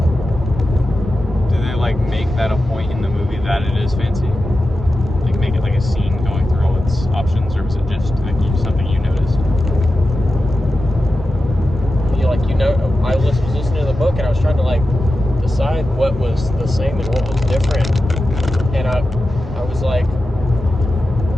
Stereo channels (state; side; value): normal; both; correlation 0.92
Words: Do they like make that a point in the movie that it is fancy? Like make it like a scene going through all its options, or was it just like something you noticed? I was listening to the book and I was trying to like decide what was the same and what was different, and I was like,